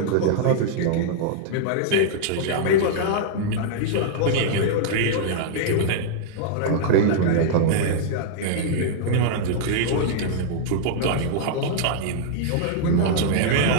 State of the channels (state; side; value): different; both; correlation -0.01